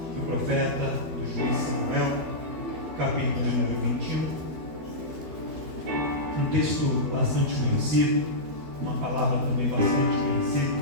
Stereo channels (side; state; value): left; late; 12 ms